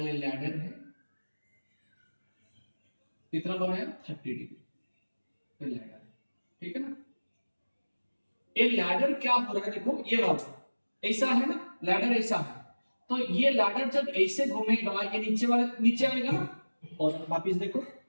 लैडर है, कितना बनाया? 30 डिग्री लैडर, ठीक है ना? ये लैडर क्या हो रहा है, देखो ये वाला ऐसा है ना, लैडर ऐसा है, तो ये लैडर जब ऐसे घूमेगा ये नीचे वाले नीचे आएगा ना, और वापिस देखो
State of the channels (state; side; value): inverted; both; correlation -1.00